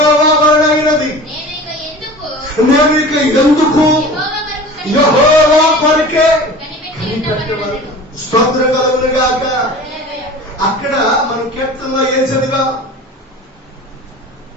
వలన అయినది, నేను ఇక ఎందుకు యెహోవా కొరకే కనిపెట్టవలెను. స్తోత్రం కలుగును గాక. అక్కడ మనం కీర్తనలో ఏం చదివా?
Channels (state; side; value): normal; both; correlation 0.38